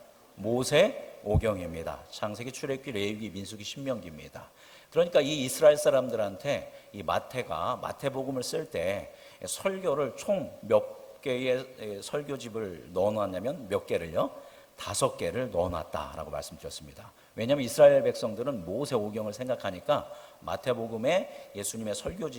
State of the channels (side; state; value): both; identical; correlation 1.00